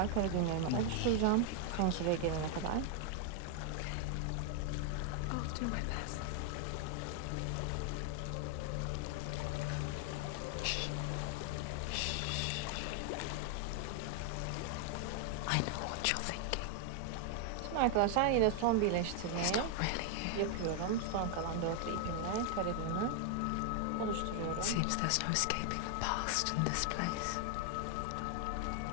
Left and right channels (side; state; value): both; different; correlation 0.00